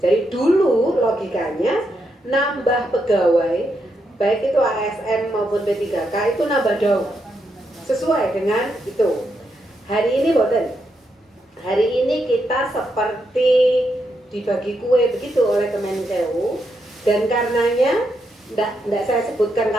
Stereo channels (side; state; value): both; normal; correlation 0.81